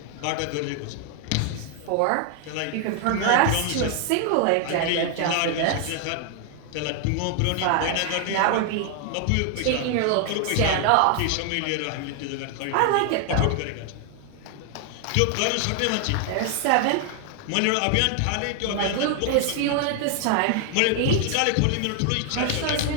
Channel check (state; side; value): different; both; correlation 0.00